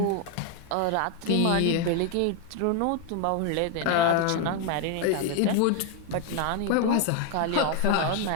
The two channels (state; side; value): different; both; correlation 0.00